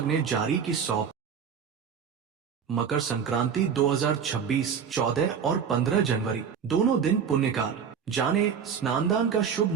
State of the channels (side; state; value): left; quieter; 7.2 dB